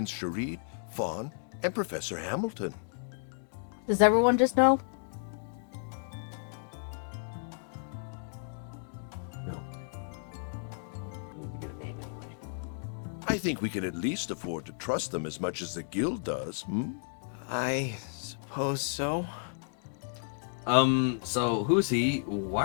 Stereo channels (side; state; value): right; silent; digital silence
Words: Sharid, Fawn, and Professor Hamilton. Does everyone just know? No. I need to get a name anyway. I think we can at least afford to trust them as much as the guild does, hmm? I suppose so. So who's he? Why